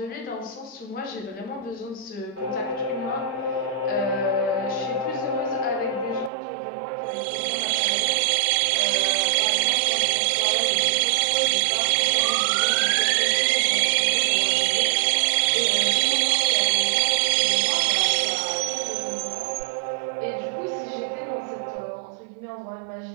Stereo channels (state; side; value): drops out; left; at 6.3 s